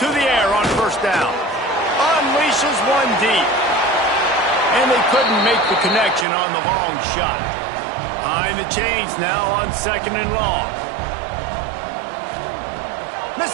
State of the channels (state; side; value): drops out; left; at 6.2 s